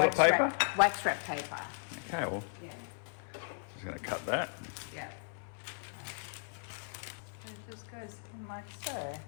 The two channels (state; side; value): silent; right; 54 dB below the other